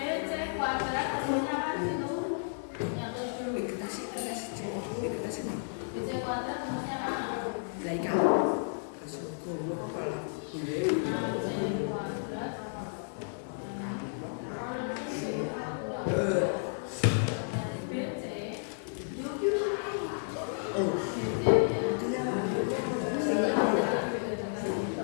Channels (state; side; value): silent; right; 56 dB below the other